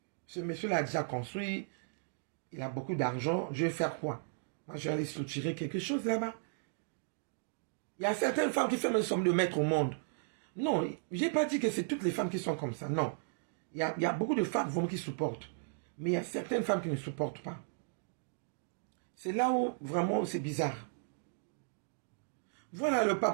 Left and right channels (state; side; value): silent; left; digital silence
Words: ce monsieur-là a déjà construit, il a beaucoup d'argent, je vais faire quoi? Moi, je vais aller soutirer quelque chose là-bas. Il y a certaines femmes qui font une somme de mettre au monde. Non, je n'ai pas dit que c'est toutes les femmes qui sont comme ça, non. Il y a beaucoup de femmes vraiment qui supportent. Mais il y a certaines femmes qui ne supportent pas. C'est là où vraiment c'est bizarre. Voilà, le